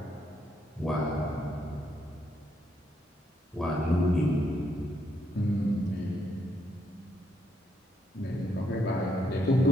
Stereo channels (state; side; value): normal; both; correlation 0.76